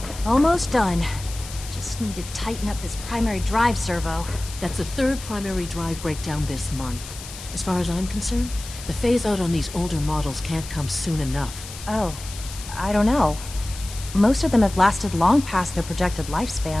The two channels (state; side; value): noise; left; hiss, 13 dB below the sound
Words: Almost done. Just need to tighten up this primary drive servo. That's the third primary drive breakdown this month. As far as I'm concerned, the phase-out on these older models can't come soon enough. Oh, I don't know. Most of them have lasted long past their projected